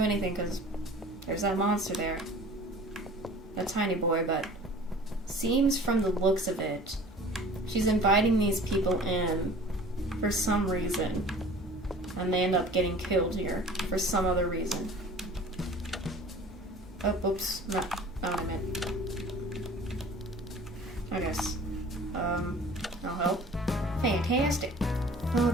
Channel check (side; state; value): both; normal; correlation 0.45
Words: anything because there's that monster there. That tiny boy, but seems from the looks of it, she's inviting these people in for some reason, and they end up getting killed here for some other reason. Oh, oops, not what I meant. I guess. I'll help. Fantastic.